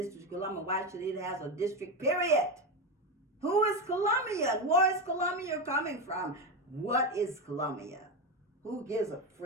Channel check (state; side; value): normal; both; correlation 0.14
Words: of Columbia? Why should it have a district, period? Who is Columbia? Where is Columbia coming from? What is Columbia? Who gives a